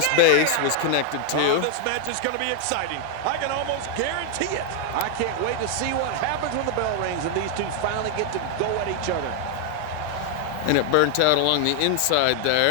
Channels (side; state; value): both; different; correlation 0.00